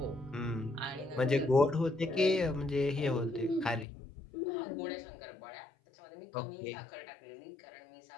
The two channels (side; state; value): right; drops out; at 3.9 s